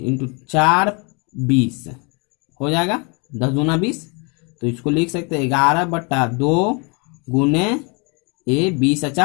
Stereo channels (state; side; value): quieter; right; 32.5 dB